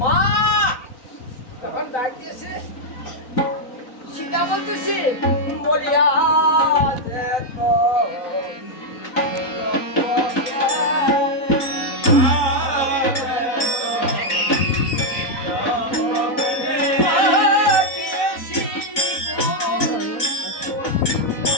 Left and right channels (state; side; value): late; right; 4.0 ms